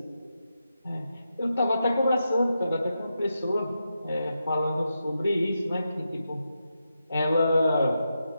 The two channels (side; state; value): both; inverted; correlation -0.87